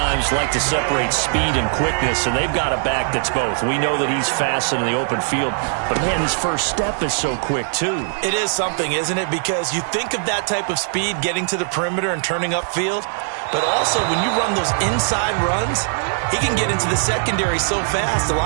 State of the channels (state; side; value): silent; left; 66 dB below the other